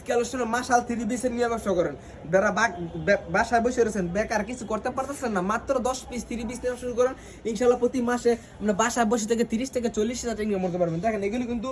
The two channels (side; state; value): both; identical; correlation 1.00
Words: কালেকশনে মাশাল 3 পিসের নিয়ে ব্যবসা করেন, যারা বাসায় বসে রয়েছেন বেকার কিছু করতে পারতেছেন না, মাত্র 10 পিস 3 পিস নিয়ে শুরু করেন, ইনশাআল্লাহ প্রতি মাসে আমরা বাসায় বসে থেকে 30 থেকে 40 হাজার টাকা ইনকাম করতে পারবেন। দেখেন এগুলি কিন্তু